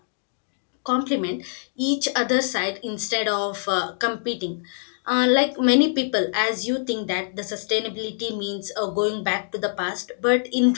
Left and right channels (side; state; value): right; silent; digital silence